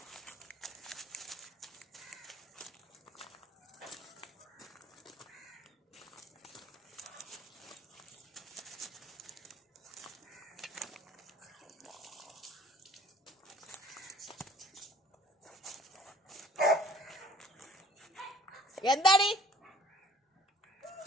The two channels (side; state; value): both; normal; correlation 0.53